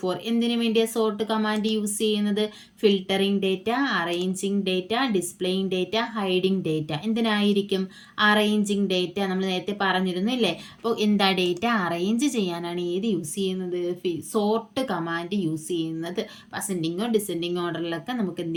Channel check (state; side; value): identical; both; correlation 1.00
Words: എന്തിനു വേണ്ടിയാണ് സോർട്ട് കമാൻഡ് യൂസ് ചെയ്യുന്നത്? Filtering data, arranging data, displaying data, hiding data. എന്തിനായിരിക്കും? Arranging data. നമ്മൾ നേരത്തെ പറഞ്ഞിരുന്നു, ഇല്ലേ? അപ്പോൾ എന്താ? ഡേറ്റ അറേഞ്ച് ചെയ്യാനാണ് ഏത് യൂസ് ചെയ്യുന്നത്? സോർട്ട് കമാൻഡ് യൂസ് ചെയ്യുന്നത്. അസെൻഡിങ്ങോ ഡിസെൻഡിങ് ഓർഡറിലൊക്കെ നമുക്ക്